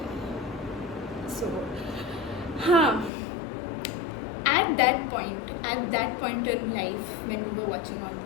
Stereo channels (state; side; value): drops out; right; at 3.1 s